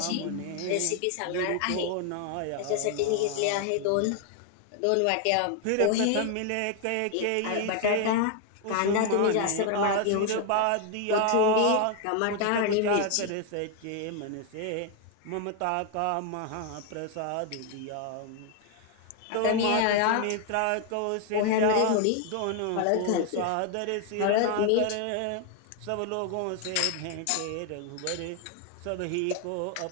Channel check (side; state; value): both; different; correlation 0.00